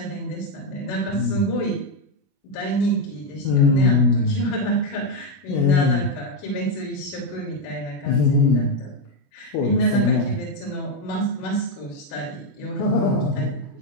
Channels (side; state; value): right; late; 21 ms